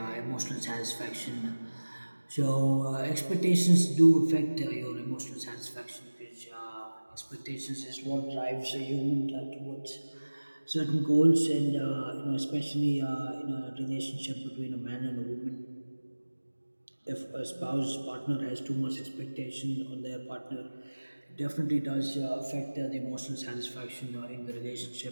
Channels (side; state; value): both; inverted; correlation -1.00